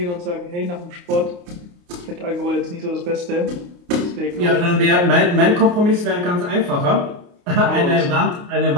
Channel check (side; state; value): left; late; 29 ms